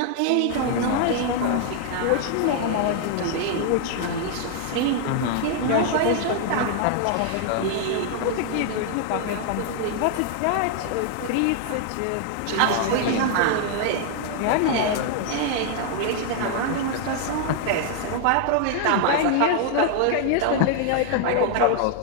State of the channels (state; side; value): different; both; correlation 0.00